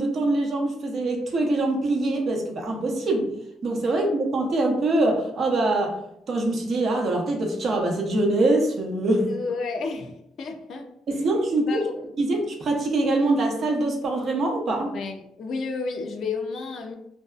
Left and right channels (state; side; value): normal; both; correlation 0.76